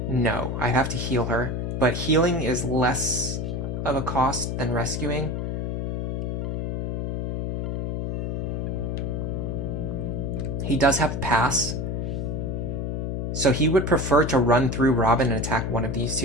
no. I have to heal her. But healing is less of a cost than rescuing. He does have pass. So he would prefer to run through Robin and attack one of these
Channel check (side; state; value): left; noise; hum, 1 dB below the sound